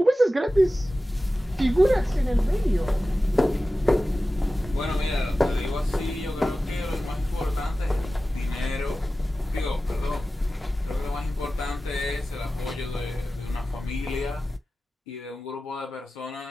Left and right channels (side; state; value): both; normal; correlation 0.95